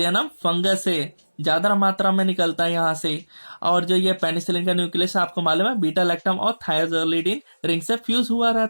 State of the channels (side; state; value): both; inverted; correlation -1.00